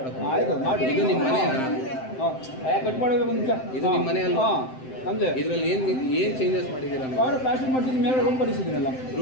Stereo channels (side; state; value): right; late; 7.7 ms